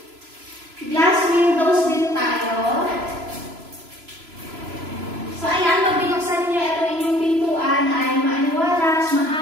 Glass windows din tayo. So ayan, pag binuksan niyo ito inyong pintuan ay maaliwalas,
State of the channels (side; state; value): left; late; 3.0 ms